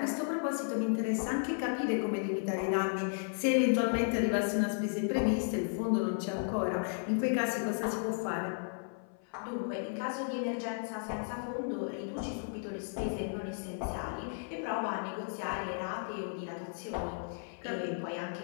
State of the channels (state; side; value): silent; right; 55 dB below the other